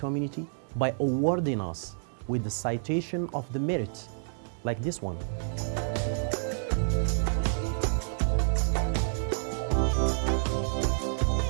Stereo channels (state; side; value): silent; left; digital silence